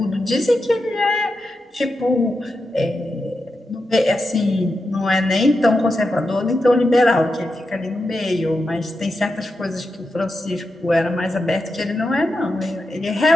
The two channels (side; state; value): both; normal; correlation 0.88